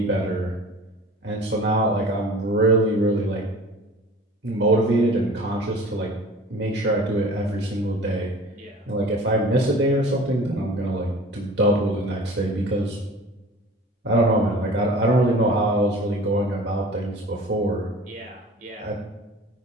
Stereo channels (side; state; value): both; normal; correlation 0.43